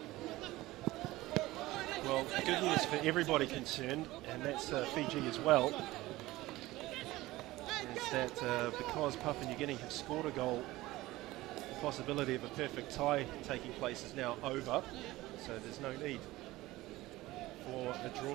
Well, the good news for everybody concerned, and that's Fiji as well, is that because Papua New Guinea have scored a goal, the possibility of a perfect tie taking place is now over, so there's no need for a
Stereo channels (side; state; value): left; quieter; 18.2 dB